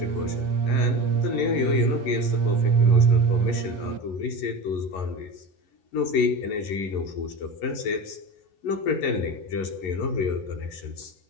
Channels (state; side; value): late; right; 11 ms